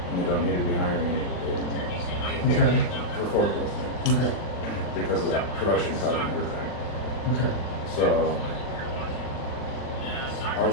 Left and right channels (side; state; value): right; late; 40 ms